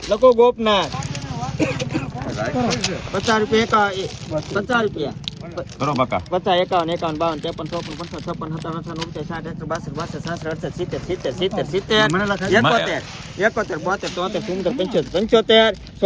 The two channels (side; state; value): both; identical; correlation 1.00